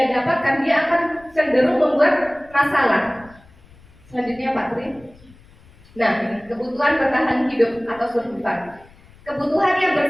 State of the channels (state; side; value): noise; left; rumble, 26 dB below the sound